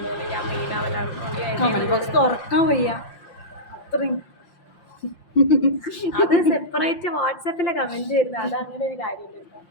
ഞാൻ മെയിൻ ആവലാണ്. തുറക്കാൻ വയ്യ അത്രയും. അത് സെപ്പറേറ്റ് വാട്സാപ്പിലെ കമന്റ് വരുന്നത്. അത് അങ്ങനെ ഒരു കാര്യമില്ല.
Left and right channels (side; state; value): right; late; 5.7 ms